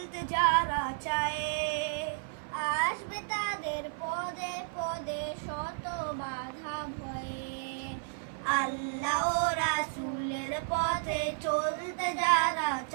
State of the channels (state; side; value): silent; left; 55 dB below the other